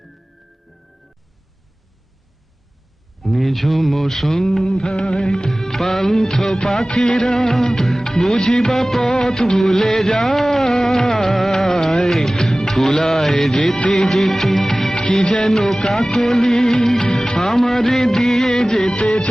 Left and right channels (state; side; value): normal; both; correlation 0.98